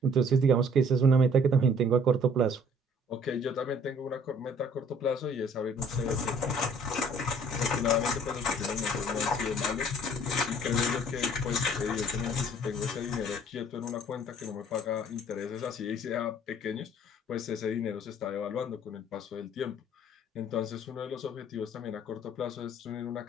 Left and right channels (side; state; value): both; normal; correlation 0.56